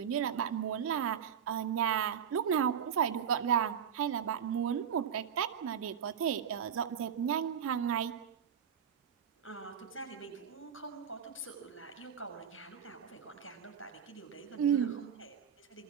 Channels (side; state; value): left; quieter; 8.1 dB